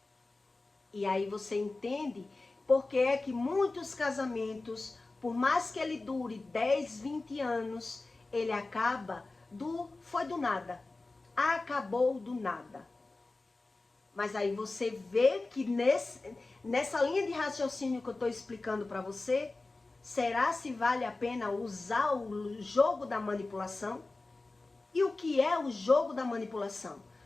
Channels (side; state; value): right; quieter; 3.3 dB